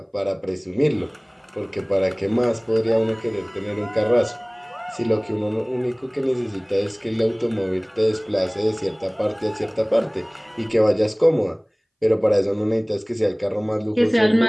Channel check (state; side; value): identical; both; correlation 1.00